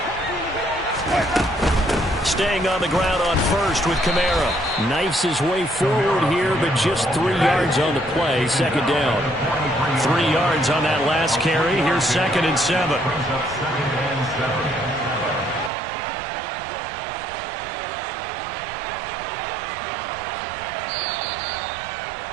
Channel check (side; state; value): left; drops out; at 15.7 s